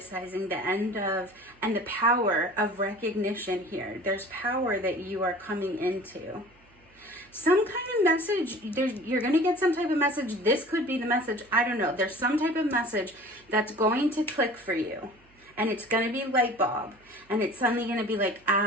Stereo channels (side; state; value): right; noise; hum, 30 dB below the sound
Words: the end of, and the power of recognition here. There's power that you are coming into. Some kind of message, you're going to get some type of message. This could be the message. I don't know. There's some type of message that's going to click for you. And it's going to be light bulb. And it's suddenly going to be like,